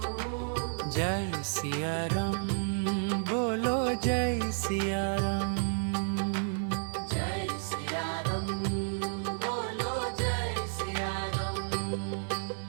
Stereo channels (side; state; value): left; silent; digital silence